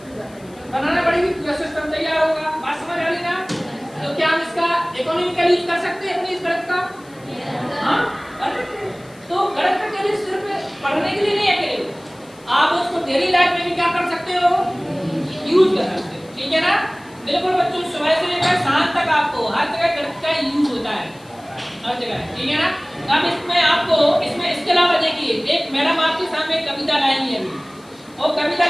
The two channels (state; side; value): noise; left; hiss, 27 dB below the sound